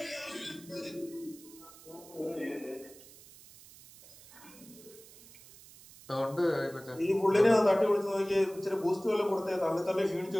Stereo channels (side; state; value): right; noise; hiss, 21 dB below the sound